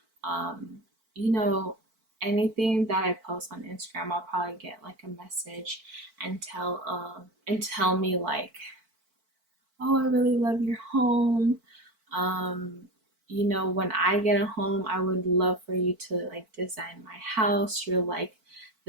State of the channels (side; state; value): left; late; 4.5 ms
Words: um, you know, anything that I post on Instagram, I'll probably get like a message and tell me like, oh, I really love your home. Um, when I get a home, I would love for you to like design my house. You're like